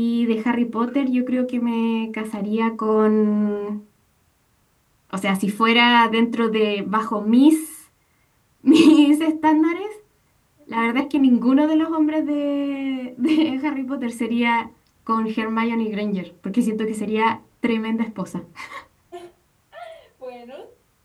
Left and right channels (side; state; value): both; identical; correlation 1.00